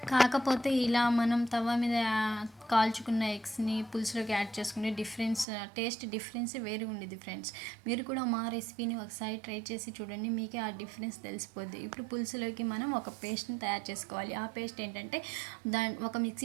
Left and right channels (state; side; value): drops out; left; at 5.5 s